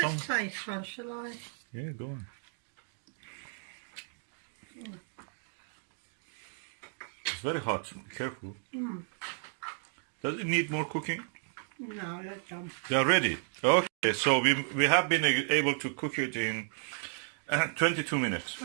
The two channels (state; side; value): silent; left; 56 dB below the other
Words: taste one, shall I? Yeah, go on. It's very hot. Be careful. Does it need more cooking? No, that's done. They are ready. Okay, so we have been able to cook it in 22 minutes.